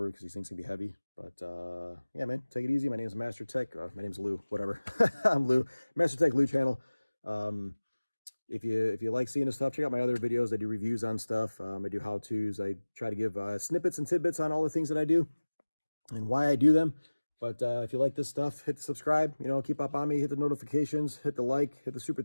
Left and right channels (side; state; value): both; inverted; correlation -1.00